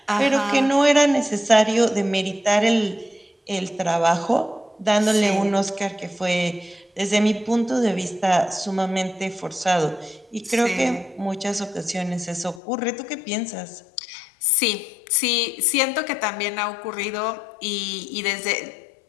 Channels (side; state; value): right; drops out; at 12.6 s